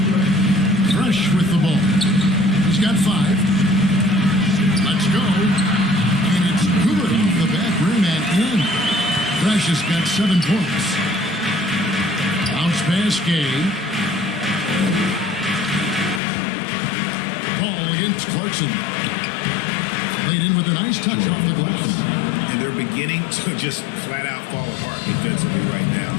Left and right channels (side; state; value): right; drops out; at 16.2 s